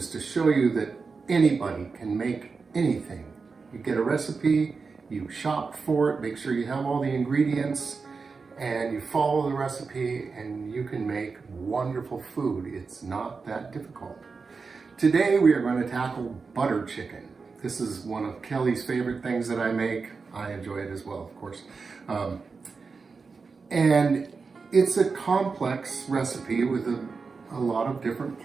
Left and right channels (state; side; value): quieter; left; 4.7 dB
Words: to show you that anybody can make anything. You get a recipe, you shop for it, make sure you have all the ingredients, and you follow the recipe and you can make wonderful food. It's not that difficult. Today we are going to tackle butter chicken. This is one of Kelly's favorite things that I make. I enjoy it as well, of course. And it's a complex recipe with a lot of different